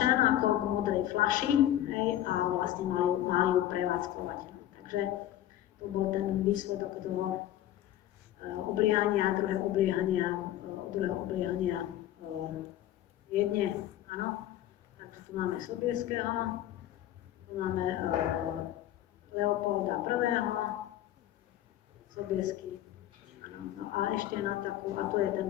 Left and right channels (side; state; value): right; quieter; 12.7 dB